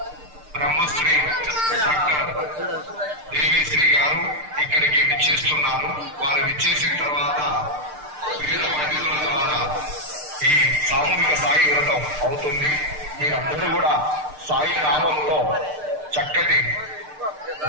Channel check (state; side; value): late; left; 6.6 ms